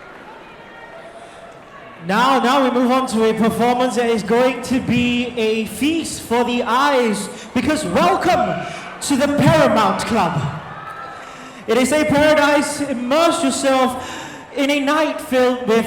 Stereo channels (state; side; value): identical; both; correlation 1.00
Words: Now we move on to a performance that is going to be a feast for the eyes, because welcome to the Paramount Club. It is a paradise. Immerse yourself in a night filled